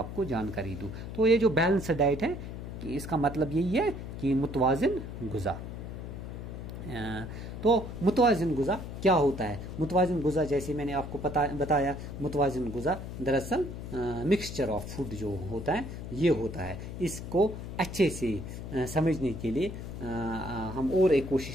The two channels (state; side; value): noise; left; hum, 8 dB below the sound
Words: کو جانکاری دوں. تو یہ جو بیلنس ڈائٹ ہے اس کا مطلب یہی ہے کہ متوازن غذا. تو متوازن غذا کیا ہوتا ہے؟ متوازن غذا جیسے میں نے آپ کو بتایا، متوازن غذا دراصل مکسچر آف فوڈ جو ہوتا ہے یہ ہوتا ہے. اس کو اچھے سے سمجھنے کے لیے ہم اور ایک